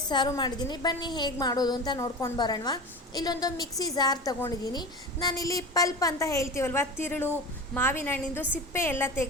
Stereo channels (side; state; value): both; normal; correlation 0.30